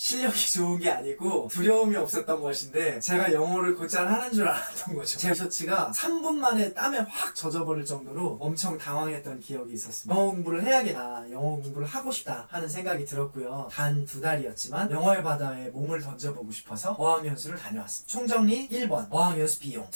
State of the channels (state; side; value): inverted; both; correlation -1.00